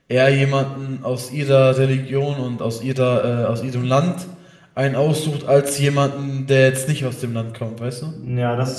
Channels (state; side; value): identical; both; correlation 1.00